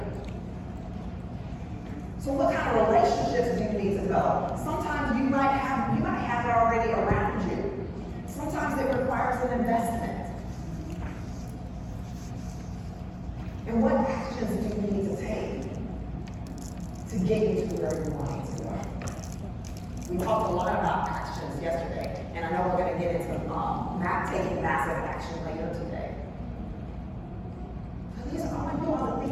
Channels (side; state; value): both; identical; correlation 1.00